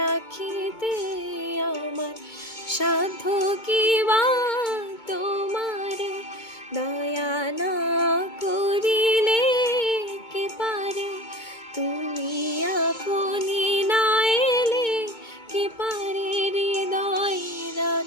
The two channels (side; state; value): right; late; 2.2 ms